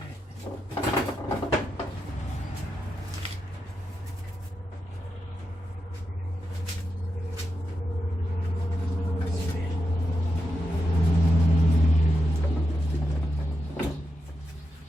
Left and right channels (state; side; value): normal; both; correlation 0.87